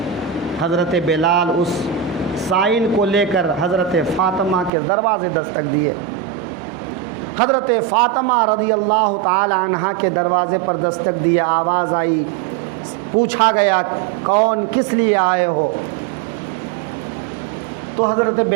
حضرت بلال اس سائل کو لے کر حضرت فاطمہ کے دروازے دستک دیے۔ حضرت فاطمہ رضی اللہ تعالی عنہا کے دروازے پر دستک دیے، آواز آئی، پوچھا گیا کون، کس لیے آئے ہو؟ تو حضرت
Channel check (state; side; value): drops out; left; at 4.7 s